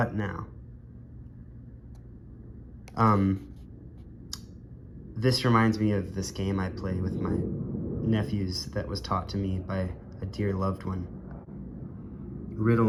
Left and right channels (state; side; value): identical; both; correlation 1.00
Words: now? This reminds me of this game I play with my nephews that was taught to me by a dear loved one. Riddle